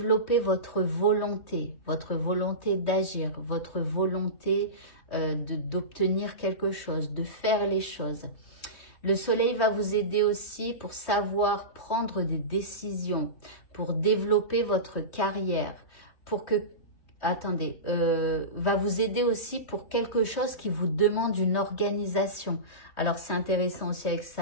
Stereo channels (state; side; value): late; right; 3.2 ms